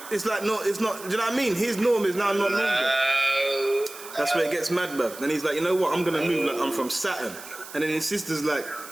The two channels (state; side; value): noise; right; hiss, 15 dB below the sound